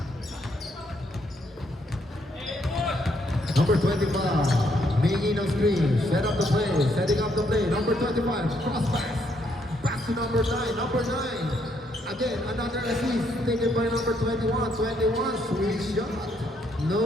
Number 25, making a screen, set up the play, setting up the play. Number 25, cross pass, pass to number 9, number 9. Again, another assist taken by number 21, 21, sweet shot.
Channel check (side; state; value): both; normal; correlation 0.73